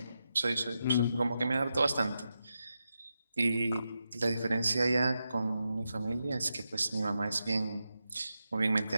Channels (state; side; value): inverted; both; correlation -0.88